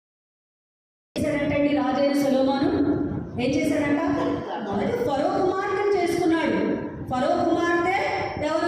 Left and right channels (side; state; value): both; identical; correlation 1.00